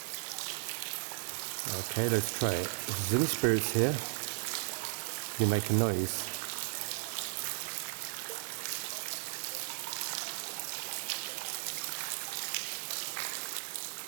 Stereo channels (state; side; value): silent; left; digital silence